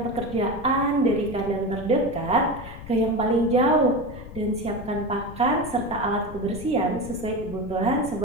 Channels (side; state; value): left; noise; rumble, 13 dB below the sound